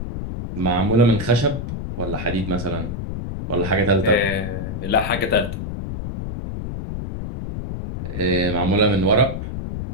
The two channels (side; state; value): left; noise; rumble, 6 dB below the sound